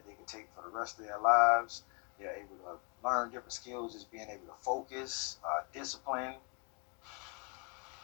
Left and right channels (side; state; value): right; quieter; 35.7 dB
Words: they can take for the rest of their lives. They're able to learn different skills as being able to focus, discipline.